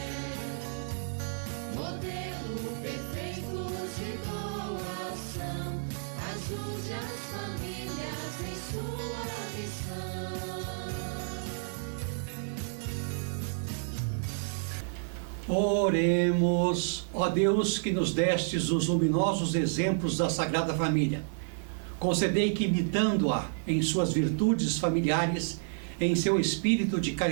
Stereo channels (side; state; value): left; silent; digital silence